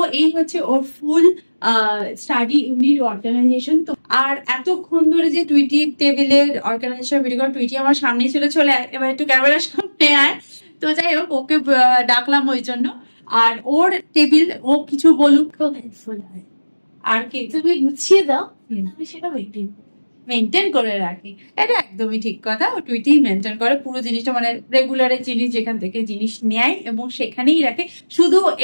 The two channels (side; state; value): both; inverted; correlation -1.00